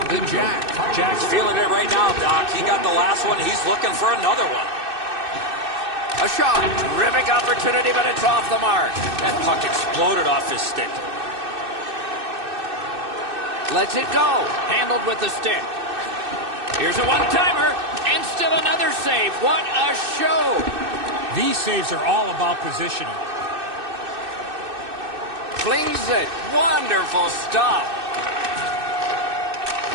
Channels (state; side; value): late; left; 2.6 ms